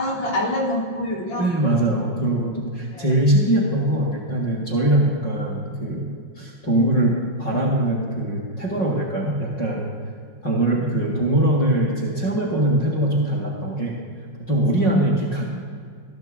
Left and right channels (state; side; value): late; right; 5.5 ms